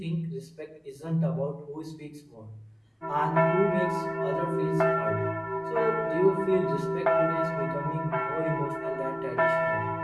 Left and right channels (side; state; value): both; identical; correlation 1.00